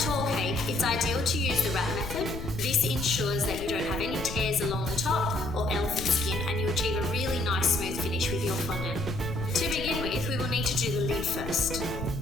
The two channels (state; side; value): noise; left; rumble, 8 dB below the sound